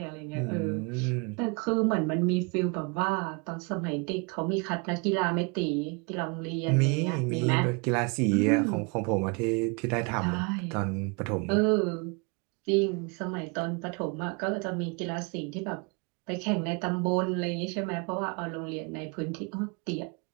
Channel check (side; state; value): left; quieter; 31.7 dB